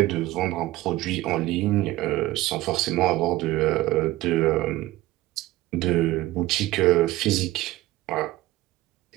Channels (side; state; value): left; quieter; 17.1 dB